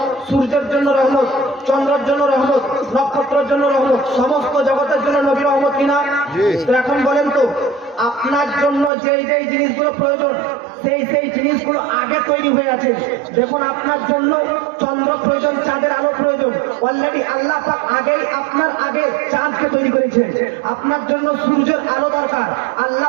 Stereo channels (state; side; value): drops out; left; at 8.9 s